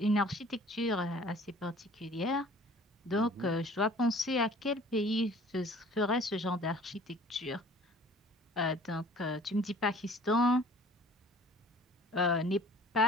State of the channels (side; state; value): both; normal; correlation 0.50